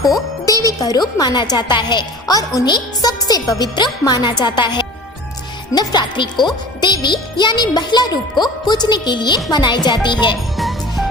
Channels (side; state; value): both; normal; correlation 0.39